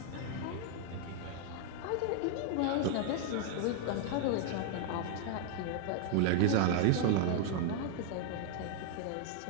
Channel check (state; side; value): different; both; correlation 0.00